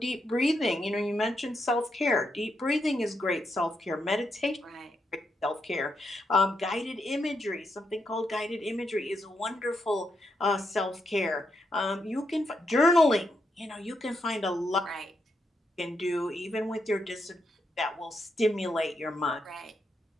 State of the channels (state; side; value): normal; both; correlation 0.82